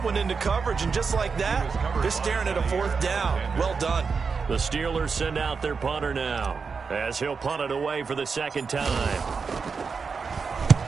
one into coverage, and just like that, they're staring at a 4th down. Well done. The Steelers send out their punter now, as he'll punt it away for the 2nd time.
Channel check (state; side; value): quieter; left; 5.2 dB